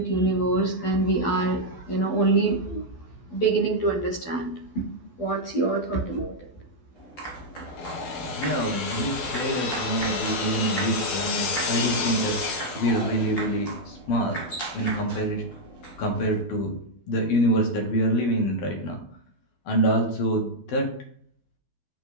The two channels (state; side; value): late; right; 12 ms